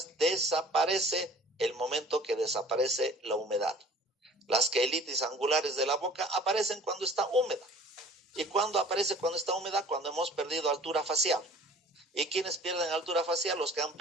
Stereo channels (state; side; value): normal; both; correlation 0.48